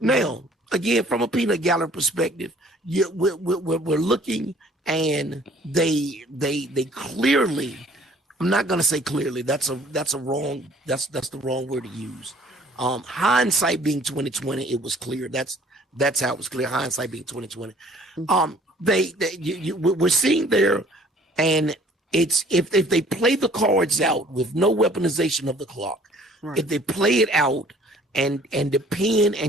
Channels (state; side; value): normal; both; correlation 0.55